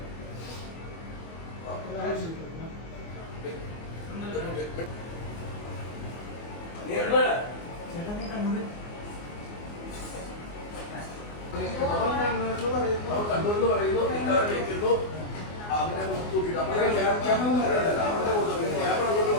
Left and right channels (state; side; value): late; right; 24 ms